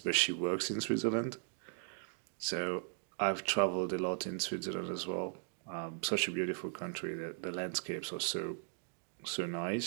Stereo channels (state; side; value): silent; left; 53 dB below the other